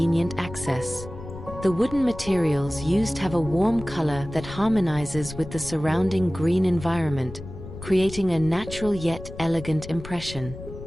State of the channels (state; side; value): noise; left; rumble, 12 dB below the sound